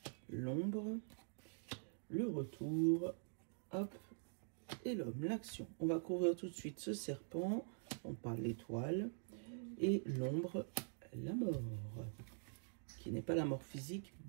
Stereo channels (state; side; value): silent; left; digital silence